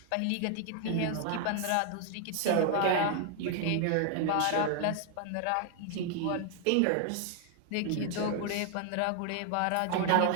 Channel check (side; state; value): both; different; correlation 0.00